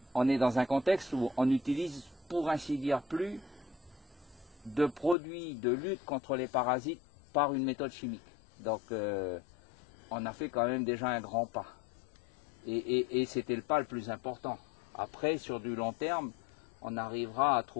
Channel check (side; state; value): right; drops out; at 5.2 s